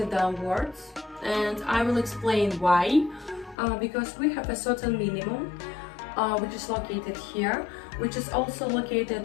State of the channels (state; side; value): drops out; right; at 3.6 s